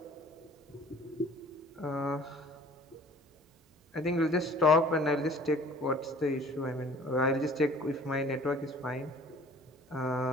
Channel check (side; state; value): both; normal; correlation 0.50